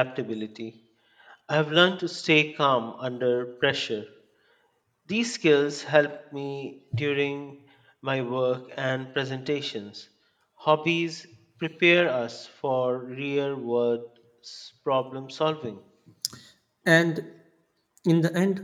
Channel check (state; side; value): identical; both; correlation 1.00